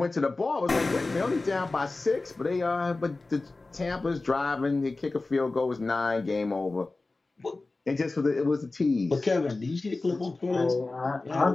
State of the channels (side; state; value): right; quieter; 3.4 dB